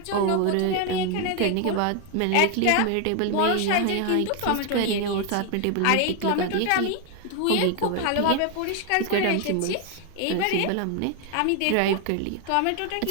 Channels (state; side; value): different; both; correlation 0.01